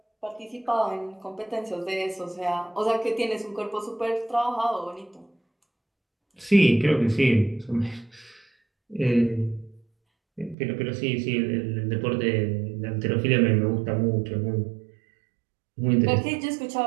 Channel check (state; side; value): drops out; left; at 10.6 s